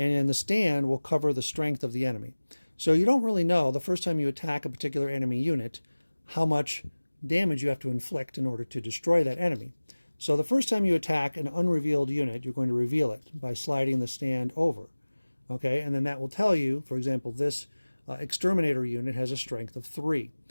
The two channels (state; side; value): inverted; both; correlation -1.00